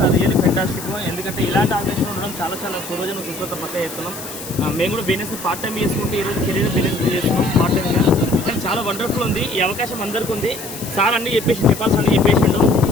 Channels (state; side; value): noise; left; hiss, 11 dB below the sound